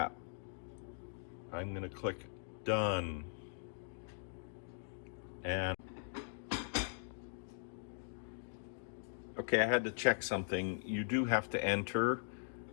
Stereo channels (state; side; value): silent; right; digital silence